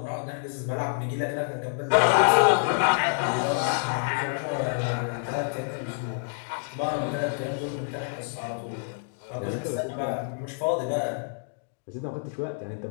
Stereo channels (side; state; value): right; silent; digital silence